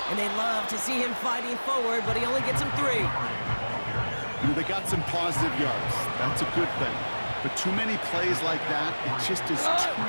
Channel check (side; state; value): both; inverted; correlation -1.00